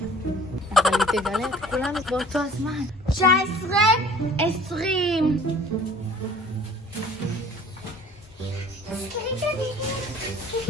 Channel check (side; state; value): both; normal; correlation 0.49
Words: אבל היא תגלה את כולנו באותו הזמן. 19, 20.